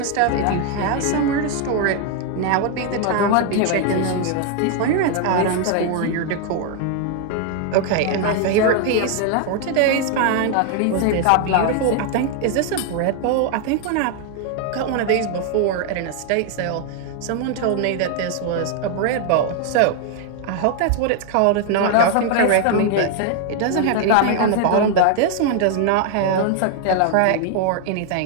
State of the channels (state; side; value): different; both; correlation 0.00